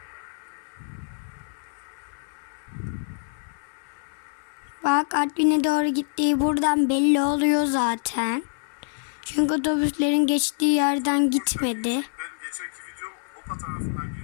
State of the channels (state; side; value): silent; right; digital silence